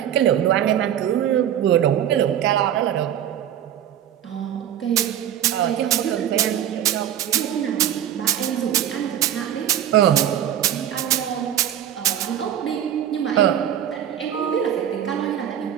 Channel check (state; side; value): quieter; left; 10.5 dB